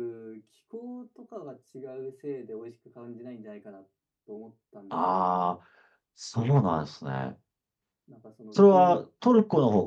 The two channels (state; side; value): identical; both; correlation 1.00